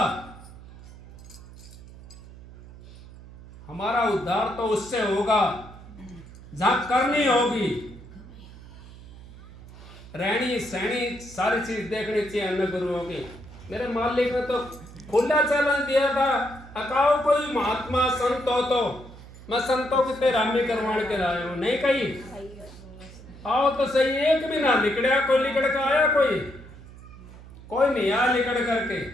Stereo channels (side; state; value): right; noise; hum, 18 dB below the sound